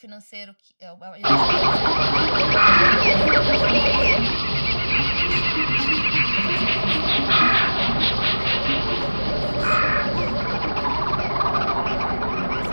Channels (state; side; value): inverted; both; correlation -1.00